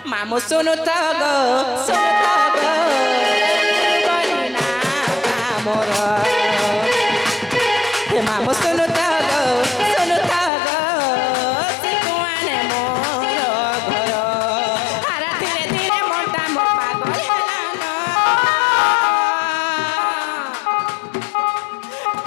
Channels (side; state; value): right; drops out; at 10.5 s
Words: মামু শুনু তো গো বলি না মোর মামু শুনু তো গো সে কুয়ানে মোর ঘর হারা ধীরে ধীরে মনটা মো পাগল হেলান